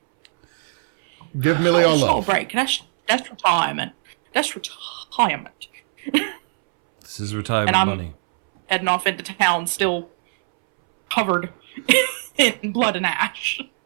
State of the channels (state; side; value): silent; left; 65 dB below the other